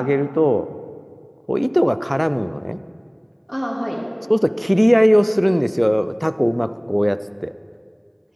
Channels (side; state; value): both; identical; correlation 1.00